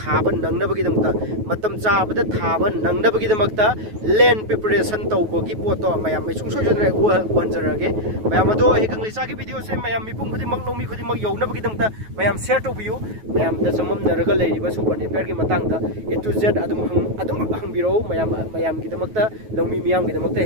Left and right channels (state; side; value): late; left; 9.3 ms